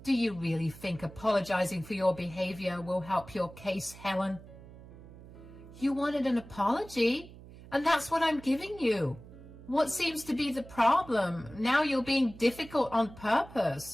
"Do you really think apologizing for your behavior will help your case, Helen?" "You wanted an apology, and that's what I'm giving you. What seems to be the problem? Now you're being difficult on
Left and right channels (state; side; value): noise; right; hum, 18 dB below the sound